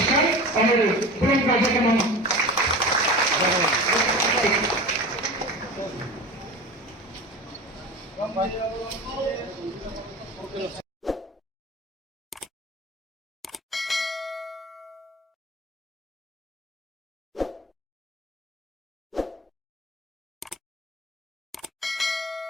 আমাদের পুরো কার্যক্রম ধন্যবাদ।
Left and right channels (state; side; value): normal; both; correlation 0.33